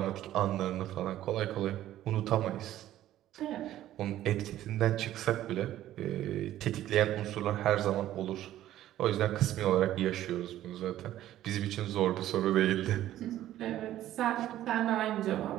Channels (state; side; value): quieter; left; 13.2 dB